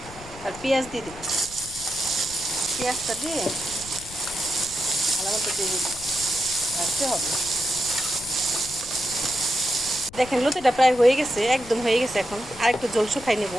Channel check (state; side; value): noise; left; rumble, 17 dB below the sound